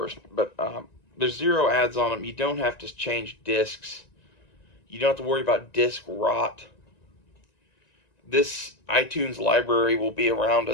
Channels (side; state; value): right; late; 1.9 ms